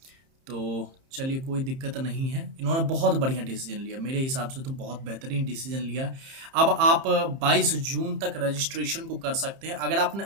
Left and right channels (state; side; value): late; left; 30 ms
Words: तो चलिए, कोई दिक्कत नहीं है। इन्होंने बहुत बढ़िया डिसीजन लिया, मेरे हिसाब से तो बहुत बेहतरीन डिसीजन लिया। अब आप 22 जून तक रजिस्ट्रेशन को कर सकते हैं। अगर आपने